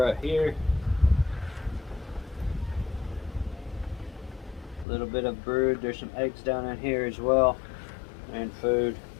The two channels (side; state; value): right; drops out; at 4.9 s